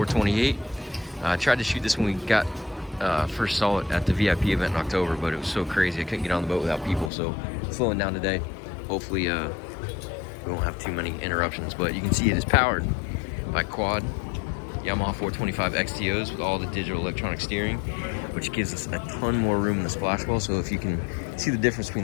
I tried to shoot this when we first saw it at the VIP event in October, but it was so crazy I couldn't get on the boat without people, so slowing down today. Hopefully we won't have too many interruptions, but you can see it is powered by quad Yamaha 425 XTOs with all the digital electronic steering, which gives us a ton more room in the splash well. So if you can see the difference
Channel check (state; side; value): drops out; right; at 7.1 s